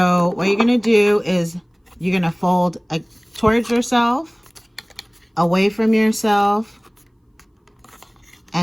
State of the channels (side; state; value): both; identical; correlation 1.00